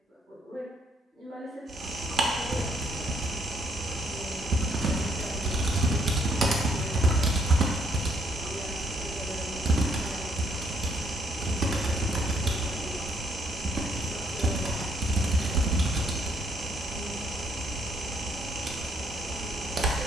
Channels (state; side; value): normal; both; correlation 0.69